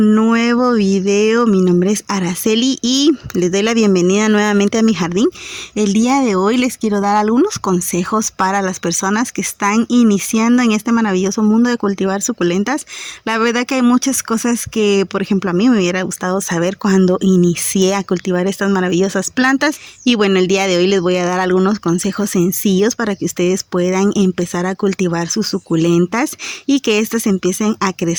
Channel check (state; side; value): identical; both; correlation 1.00